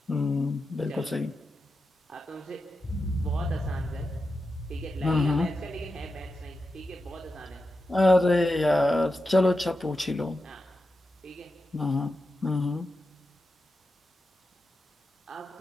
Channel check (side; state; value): both; normal; correlation 0.90